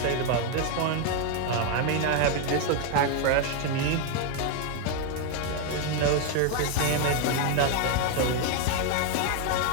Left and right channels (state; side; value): different; both; correlation 0.01